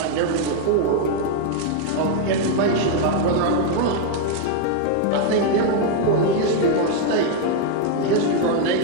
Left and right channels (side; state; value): both; different; correlation 0.00